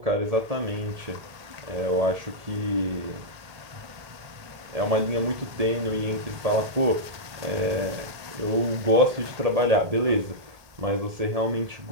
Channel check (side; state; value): left; late; 1.8 ms